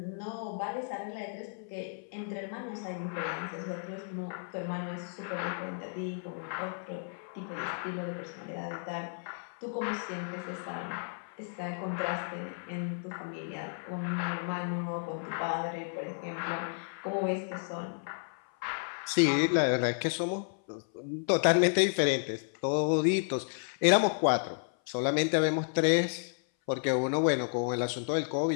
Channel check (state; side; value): silent; right; 56 dB below the other